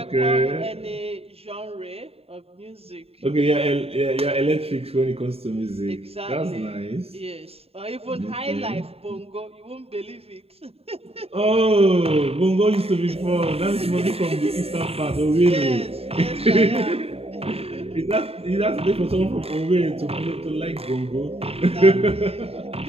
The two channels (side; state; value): left; late; 0.29 ms